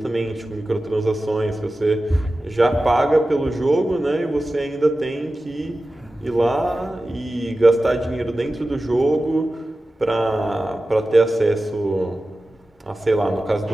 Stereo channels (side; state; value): both; normal; correlation 0.95